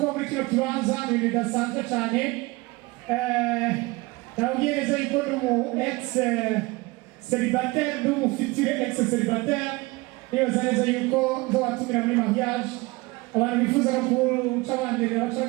muri kino kibanza ibintu bidasanzwe cyane nabwiye neza yuko n'umu ex-célibataire n'umu futur ex-célibataire nibaza neza yuko nzobatumira muri mariage abantu bifuza no guca banderera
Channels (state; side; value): quieter; left; 23.1 dB